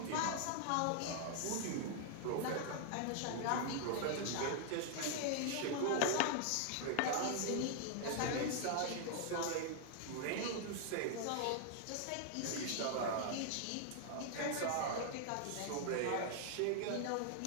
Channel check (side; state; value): both; different; correlation 0.00